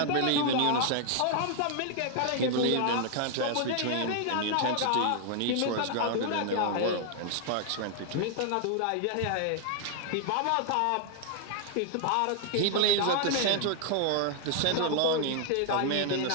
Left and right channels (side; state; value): both; different; correlation 0.00